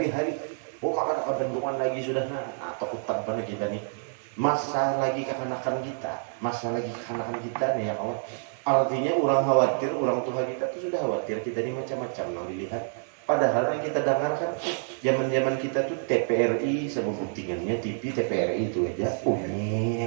Oh maka kebenduan lagi sudah atau hutan pada kita nih. Masa lagi kekanakan kita nih ya kawan. Artinya orang khawatir, orang tua kita tuh sudah khawatir kita ini macam-macam nang dilihat. Padahal yang kita dengarkan zaman-zaman kita tuh TPRI sama buktingannya TV TPRI itu aja.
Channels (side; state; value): left; silent; digital silence